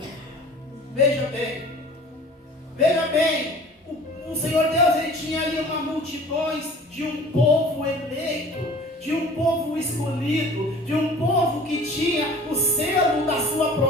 Veja bem, o Senhor Deus, ele tinha ali uma multidões de um povo eleito, de um povo escolhido, de um povo que tinha o selo da sua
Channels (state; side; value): normal; both; correlation 0.45